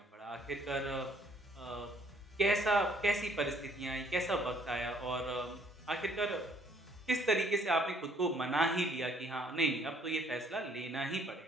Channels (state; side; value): normal; both; correlation 0.63